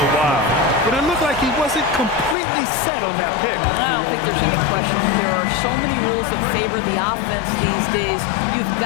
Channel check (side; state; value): right; drops out; at 2.4 s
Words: while, but it looked like he wasn't completely set on that pick. I don't think there's any question. There are so many rules that favor the offense these days. You've